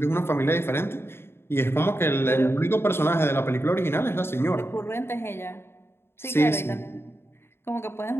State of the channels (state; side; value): late; right; 0.11 ms